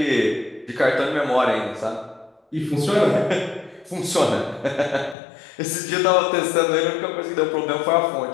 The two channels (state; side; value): drops out; right; at 5.2 s